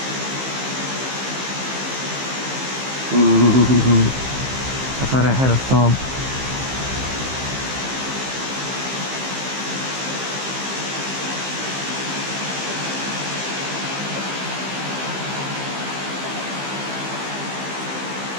Ooh, I thought I had a thump.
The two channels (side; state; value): left; late; 15 ms